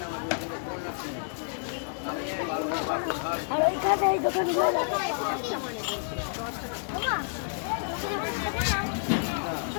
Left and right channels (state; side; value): silent; right; digital silence